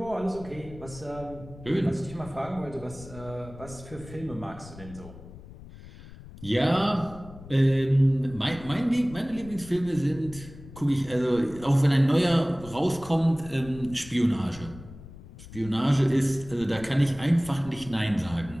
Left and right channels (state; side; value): noise; left; rumble, 17 dB below the sound